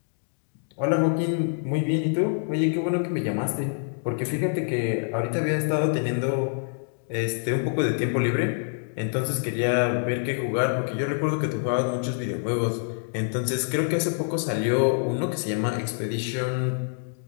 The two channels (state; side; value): silent; right; digital silence